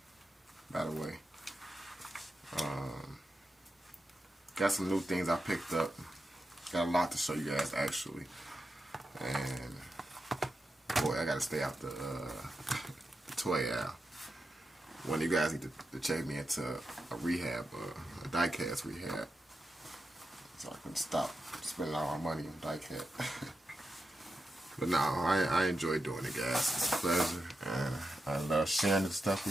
by the way. Got some new things I picked up. Got a lot to show you guys, actually. And, boy, I gotta stay out the toy aisle. One of you guys need to check me into a rehab, a diecast rehab, so I can stop spending all my money on diecast. But no, I enjoy doing it, guys. It's a pleasure, and I love sharing this stuff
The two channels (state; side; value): normal; both; correlation 0.89